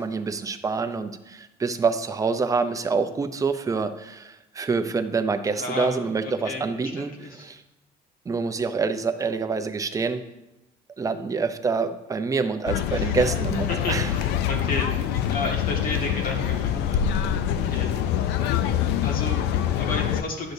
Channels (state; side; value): normal; both; correlation 0.39